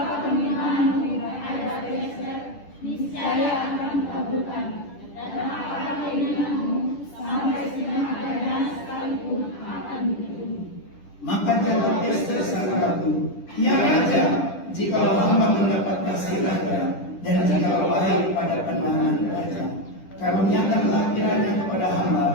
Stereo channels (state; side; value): late; right; 10 ms